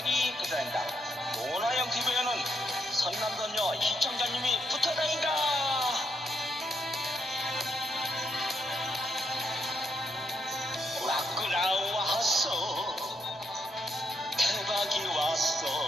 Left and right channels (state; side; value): normal; both; correlation 0.77